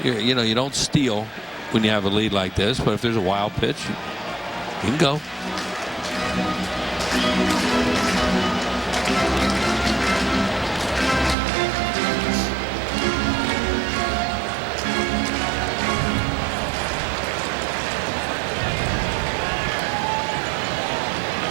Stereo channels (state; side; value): drops out; left; at 11.4 s